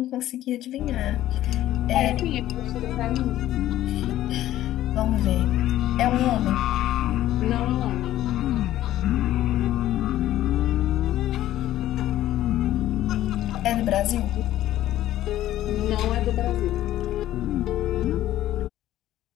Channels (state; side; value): quieter; right; 13.6 dB